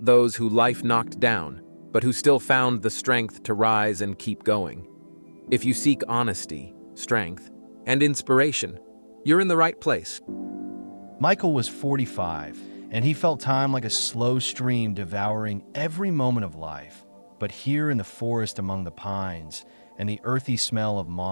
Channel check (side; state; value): both; inverted; correlation -1.00